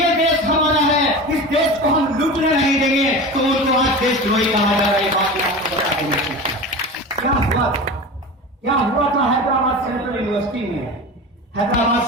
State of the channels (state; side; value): normal; both; correlation 0.30